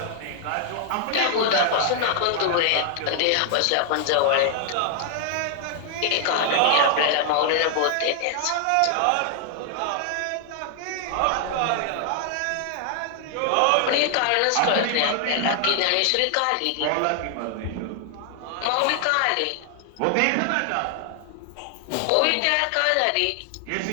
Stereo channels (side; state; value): both; different; correlation 0.00